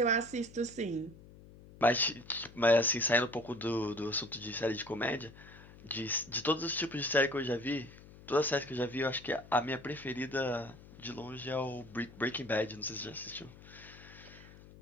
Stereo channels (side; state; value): left; noise; hum, 20 dB below the sound